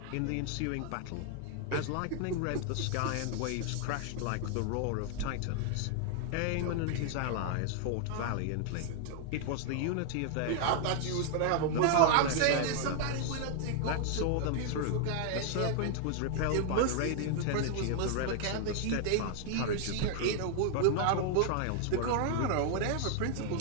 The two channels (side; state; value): both; different; correlation 0.00